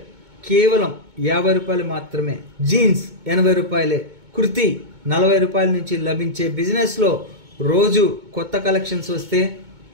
కేవలం 50 రూపాయలు మాత్రమే, జీన్స్ 80 రూపాయలే, కుర్తీ 40 రూపాయల నుంచి లభించే బిజినెస్లో రోజు కొత్త కలెక్షన్స్ వస్తే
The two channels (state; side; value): late; left; 2.2 ms